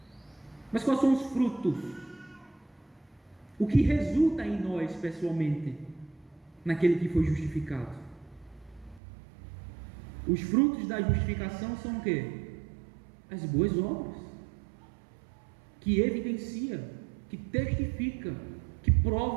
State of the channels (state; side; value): drops out; left; at 9.0 s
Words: Mas quais são os frutos? O que resulta em nós pessoalmente, naquele que foi justificado? Os frutos da justificação são o quê? As boas obras, que evidencia, que testifica, que